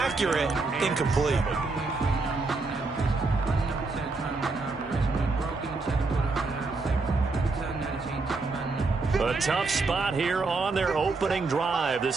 incomplete. A tough spot here on their opening drive.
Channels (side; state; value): left; quieter; 3.7 dB